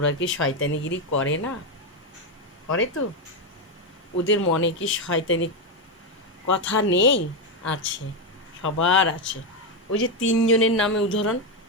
কি শয়তানিগিরি করে না? করে তো। ওদের মনে কি শয়তানি কথা নেই? আছে, সবার আছে। ওই যে তিনজনের নামে উদাহরণ,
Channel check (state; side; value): normal; both; correlation 0.07